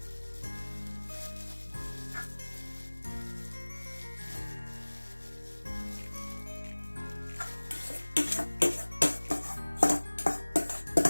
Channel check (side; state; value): both; inverted; correlation -1.00